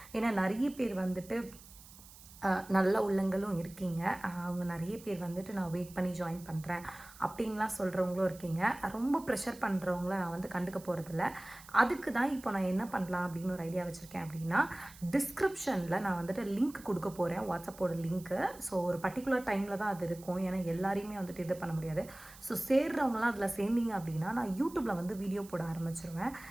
ஏன்னா நிறைய பேர் வந்துட்டு நல்ல உள்ளங்களும் இருக்கீங்க. அவங்க நிறைய பேர் வந்துட்டு நான் வெயிட் பண்ணி ஜாயின் பண்ணுறேன் அப்படின்லாம் சொல்கிறவங்களும் இருக்கீங்க. ரொம்ப ப்ரெஷர் பண்ணுறவங்கள நான் வந்து கண்டுக்க போகிறதில்ல. அதுக்கு தான் இப்போ நான் என்ன பண்ணலாம் அப்படின்னு ஒரு ஐடியா வச்சுருக்கேன். அப்படின்னா டிஸ்கிரிப்ஷனில் நான் வந்துட்டு லிங்க் கொடுக்க போகிறேன், வாட்ஸ்அப்போட லிங்க்கு. ஸோ ஒரு பர்டிகுலர் டைமில் தான் அது இருக்கும். ஏன்னா எல்லாரையுமே வந்துட்டு இது பண்ண முடியாது. ஸோ சேர்றவங்களாம் அதில் சேர்ந்தீங்க அப்படின்னா நான் யூடியூப்பில் வந்து வீடியோ போட ஆரம்பிச்சிருவேன்.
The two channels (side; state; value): right; noise; hiss, 20 dB below the sound